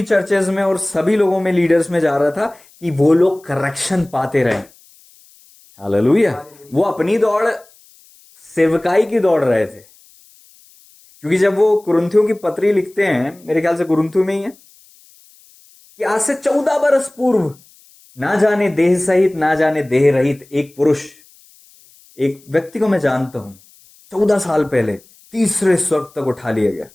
चर्चेज में और सभी लोगों में, लीडर्स में जा रहा था कि वो लोग करेक्शन पाते रहे। हालेलुया। वो अपनी दौड़ सेवकाई की दौड़ रहे थे, क्योंकि जब वो कुरिन्थियों की पत्री लिखते हैं, मेरे ख्याल से कुरिन्थियों में ही है, कि आज से 14 बरस पूर्व ना जाने देह सहित ना जाने देह रहित एक पुरुष, एक व्यक्ति को मैं जानता हूं, 14 साल पहले तीसरे स्वर्ग तक उठा लिया गया।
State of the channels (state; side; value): noise; left; hiss, 28 dB below the sound